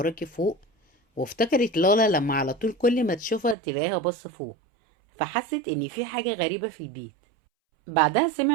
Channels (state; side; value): drops out; left; at 3.6 s